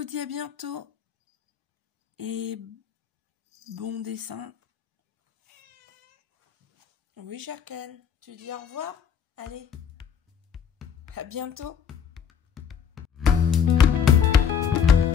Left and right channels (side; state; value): right; quieter; 7.5 dB